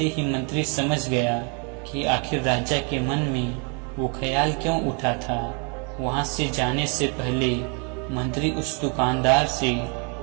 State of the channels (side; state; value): left; quieter; 36.1 dB